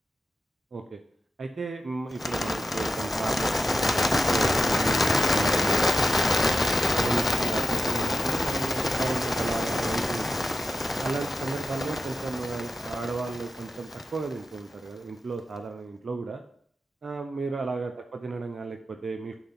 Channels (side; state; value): both; normal; correlation 0.85